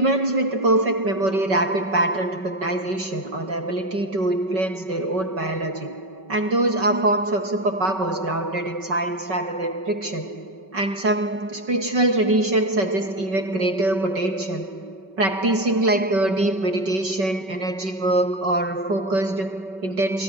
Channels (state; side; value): late; left; 5.3 ms